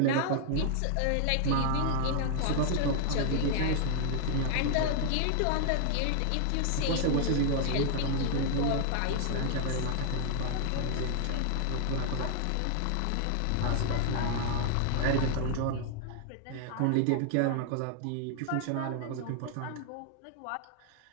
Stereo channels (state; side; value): different; both; correlation 0.00